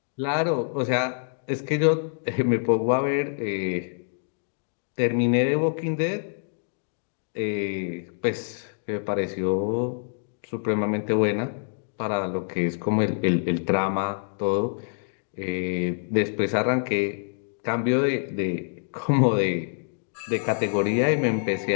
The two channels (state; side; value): silent; right; digital silence